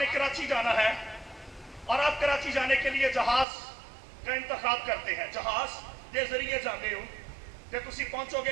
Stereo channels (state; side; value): drops out; left; at 3.5 s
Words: कराची जाना है और आप कराची जाने के लिए जहाज का इंतखाब करते हैं। जहाज के जरिए जाते हो तो तुसी पहुंचोगे